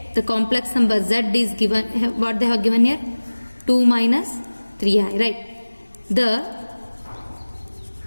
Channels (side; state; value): both; inverted; correlation -1.00